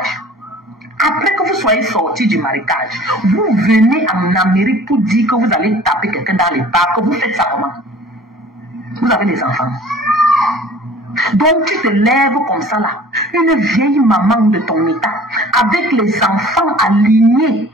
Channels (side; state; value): both; normal; correlation 0.48